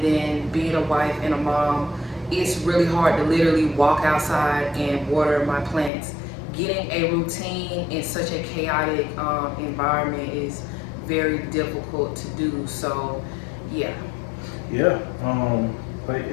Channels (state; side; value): drops out; right; at 5.9 s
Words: then being a wife and a mom. It's really hard to literally walk outside and water my plants. Getting a routine in such a chaotic environment is very difficult to do. So, yeah. Yeah. But